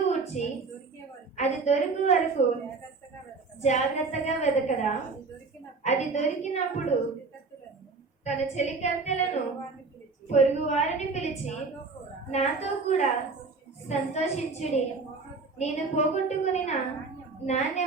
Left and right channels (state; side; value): quieter; left; 4.1 dB